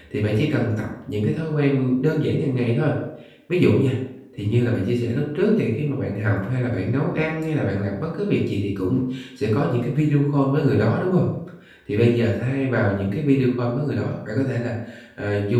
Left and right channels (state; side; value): identical; both; correlation 1.00